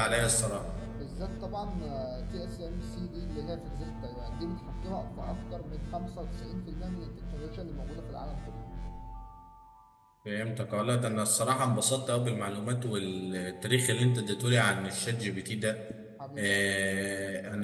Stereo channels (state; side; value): identical; both; correlation 1.00